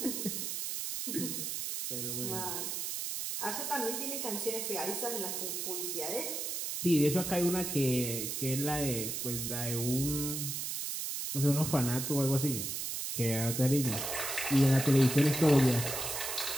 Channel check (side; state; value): right; noise; hiss, 3 dB below the sound